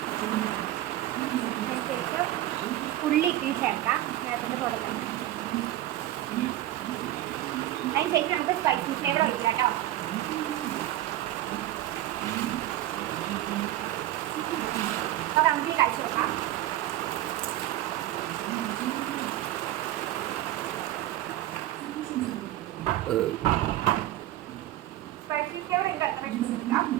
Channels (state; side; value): quieter; left; 14.4 dB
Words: അതിനുശേഷം ഉള്ളി ഇത്തിരി ചേർക്കാം. നേരത്തെ തുടങ്ങാം. അതിനുശേഷം നമുക്ക് സ്പൈസി ഫ്ലേവർ ഒഴിക്കാം കേട്ടോ. അപ്പോൾ നമുക്ക് കഴിച്ചു നോക്കാം. സ്പൈസി ഫ്ലേവർ എനിക്ക് അത്ര ഇഷ്ടമില്ല.